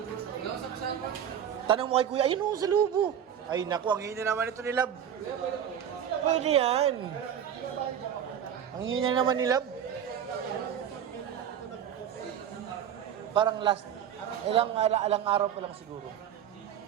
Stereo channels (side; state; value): left; quieter; 9.3 dB